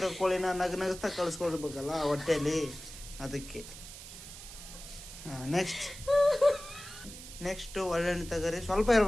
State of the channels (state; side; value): noise; right; hiss, 14 dB below the sound